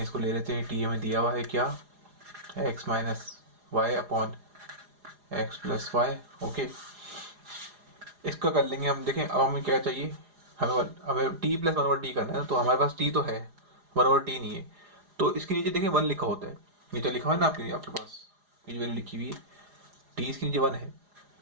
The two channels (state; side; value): late; left; 4.9 ms